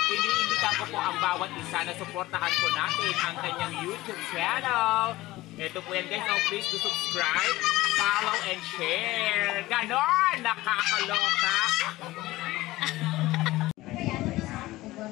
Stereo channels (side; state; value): right; quieter; 18.0 dB